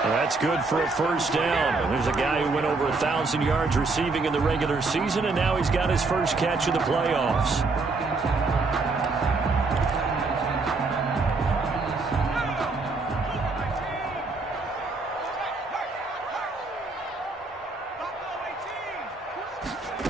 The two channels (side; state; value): left; quieter; 3.8 dB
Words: That's good for a first down. There's a guy who went over 1,000 yards receiving in the regular season, and now he's got his first catch in the playoffs.